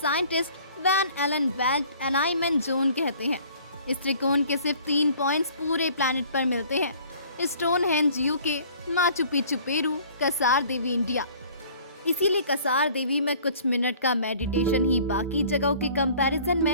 Van Allen belt alignment zone कहते हैं। इस त्रिकोण के सिर्फ 3 पॉइंट्स पूरे प्लैनेट पर मिलते हैं, Stonehenge UK, Machu Picchu Peru, Kasar Devi India. इसीलिए कसार देवी में कुछ मिनट का मेडिटेशन ही बाकी जगहों के कंपैरिजन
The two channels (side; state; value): both; inverted; correlation -0.52